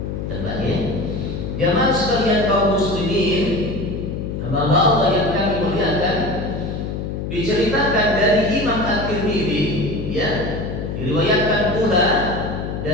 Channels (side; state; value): left; noise; hum, 5 dB below the sound